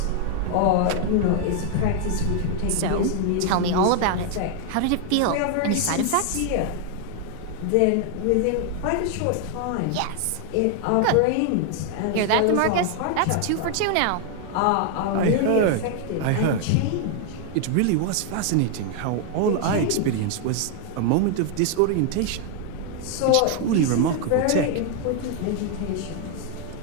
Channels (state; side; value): different; both; correlation 0.00